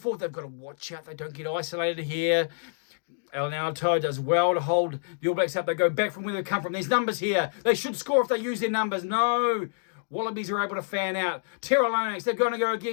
They've got to watch out. They don't get isolated here. Alan Alatoa does well to hold the All Blacks up. They go back from where they come from. There's numbers here. They should score if they use their numbers. No. Wallabies are able to fan out. Tyrell Lomax, they're going to go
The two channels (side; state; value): right; silent; digital silence